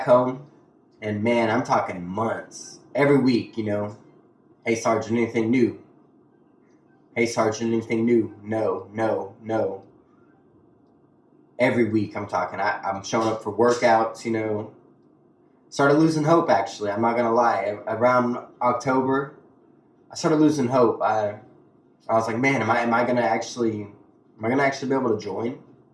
home. And man, I'm talking months. Every week, hey, Sergeant, anything new? Hey, Sergeant, anything new? No. Every week I'm talking. I'm showing up for workouts, Started losing hope, actually. I'm not going to lie. Around October, I started losing hope. I was like, man, am I going to actually be able to join?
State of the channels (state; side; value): identical; both; correlation 1.00